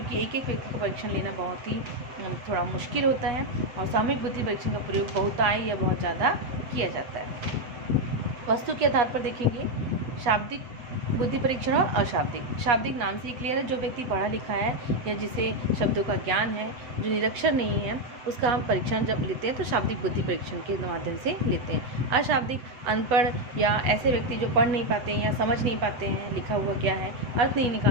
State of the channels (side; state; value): left; late; 7.9 ms